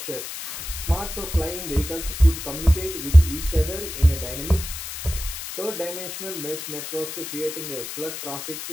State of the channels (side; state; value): left; noise; hiss, 8 dB below the sound